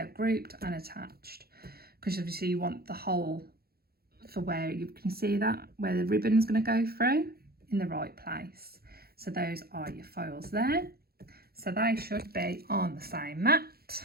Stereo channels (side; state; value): left; late; 0.45 ms